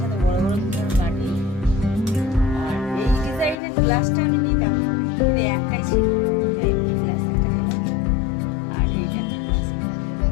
সাথে বড় বড় বাটি। গ্লাসটা আমি নিতাম কিন্তু একটাই ছিল, তাই গ্লাস একটা নিলাম। আর এইটা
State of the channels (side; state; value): right; drops out; at 3.6 s